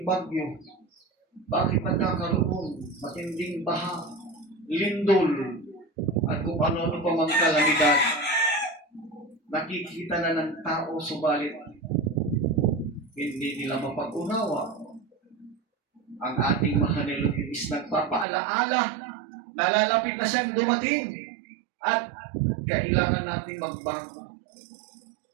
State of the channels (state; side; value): drops out; left; at 18.2 s